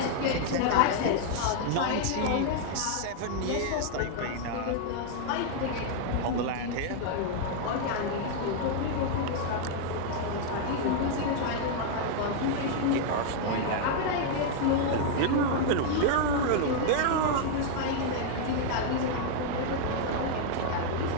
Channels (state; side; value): different; both; correlation 0.00